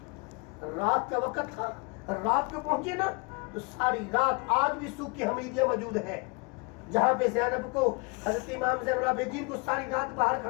रात का वक्त था, रात को पहुंचे ना, तो सारी रात आज भी सूख की हमीदिया मौजूद है, जहां पे ज़ैनब को, हज़रत इमाम ज़ैनुल आबिदीन को सारी रात बाहर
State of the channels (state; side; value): quieter; right; 31.4 dB